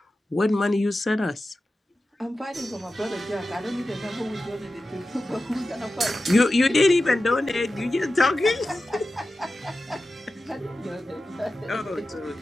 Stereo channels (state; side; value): normal; both; correlation 0.93